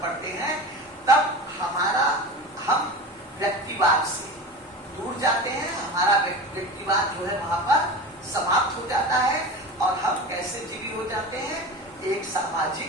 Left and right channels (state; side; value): normal; both; correlation 0.31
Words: पड़ते हैं तब हम व्यक्तिवाद से दूर जाते हैं, हमारा व्यक्तिवाद जो है वहां पर समाप्त हो जाता है और हम कैसे एक